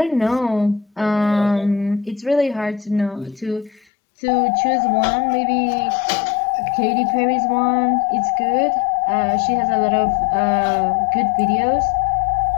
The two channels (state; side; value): drops out; right; at 3.9 s